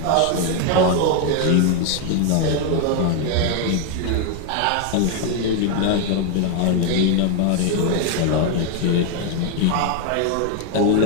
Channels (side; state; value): both; different; correlation 0.00